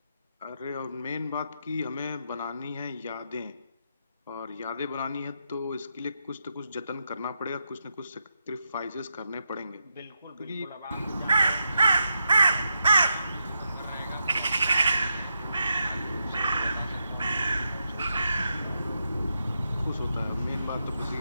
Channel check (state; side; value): inverted; both; correlation -0.84